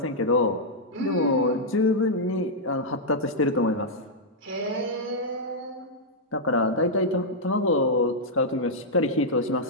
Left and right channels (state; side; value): normal; both; correlation -0.06